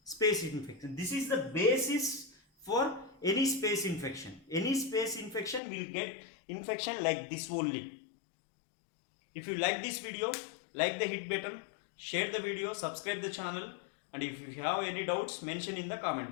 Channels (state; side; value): drops out; right; at 5.6 s